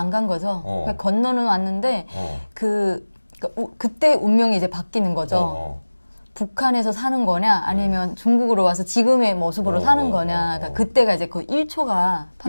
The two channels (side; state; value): both; inverted; correlation -1.00